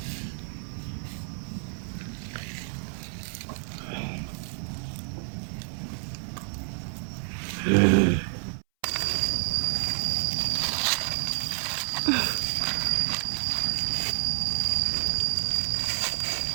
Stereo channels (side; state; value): left; silent; 59 dB below the other